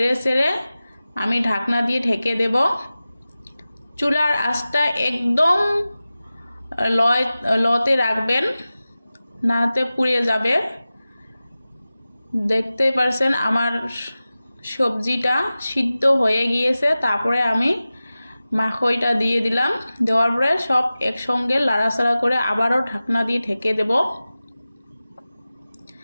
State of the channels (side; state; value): both; inverted; correlation -0.96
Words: চেড়ে আমি ঢাকনা দিয়ে ঢেকে দেব। চুলার আঁচটা একদম লতে রাখবেন, নাতে পুড়ে যাবে। দেখতে পারছেন আমার সবজিটা সিদ্ধ হয়ে গিয়েছে। তারপরে আমি মাখইটা দিয়ে দিলাম। দেওয়ার পরে সব একসঙ্গে লাড়াচাড়া করে আবারও ঢাকনা দিয়ে ঢেকে দেব।